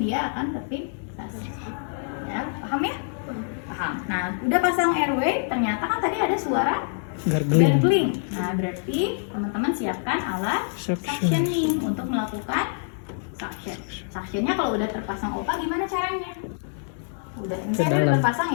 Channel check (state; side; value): silent; right; digital silence